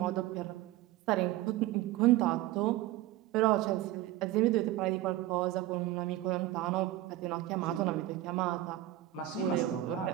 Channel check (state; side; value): quieter; left; 14.9 dB